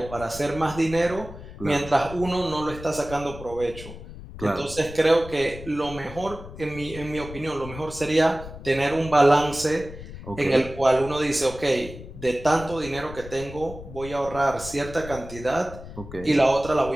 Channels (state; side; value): noise; left; rumble, 13 dB below the sound